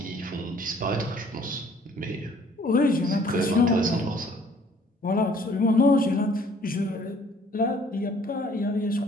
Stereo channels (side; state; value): both; normal; correlation 0.57